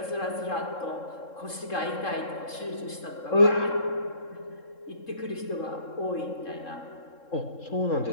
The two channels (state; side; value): late; right; 3.7 ms